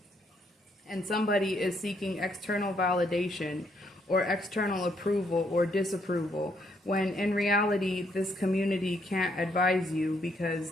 And somebody is seeking external validation or external approval or disapproval, when in reality this community can't advise you because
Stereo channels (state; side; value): normal; both; correlation 0.72